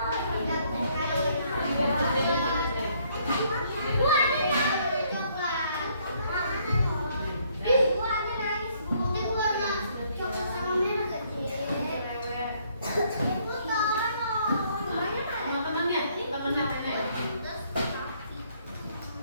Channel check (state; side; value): inverted; both; correlation -0.67